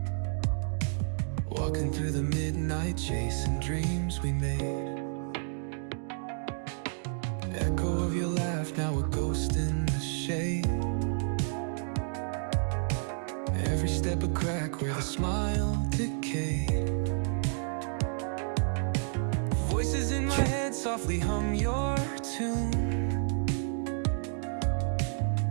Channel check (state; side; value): silent; left; digital silence